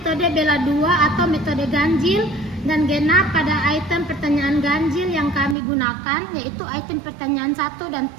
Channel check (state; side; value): drops out; left; at 5.6 s